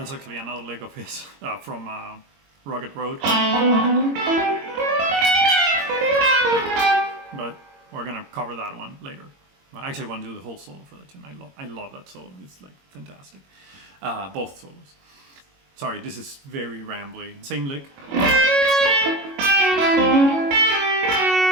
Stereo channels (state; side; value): late; left; 22 ms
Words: actually another lick of his from Rugged Road. But we're gonna cover that one later. I actually want to do the whole solo for that tune. I love that solo. It's like fantastic. Both solos. Sorry, this is very rambly. Same lick.